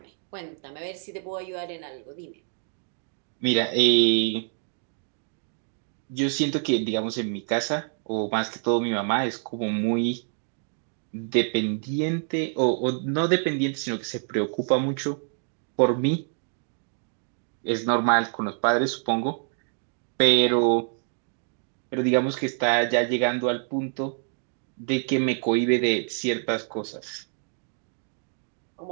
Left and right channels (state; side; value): silent; left; 60 dB below the other